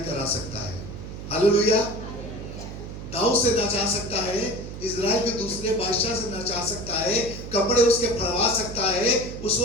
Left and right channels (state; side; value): noise; right; hum, 10 dB below the sound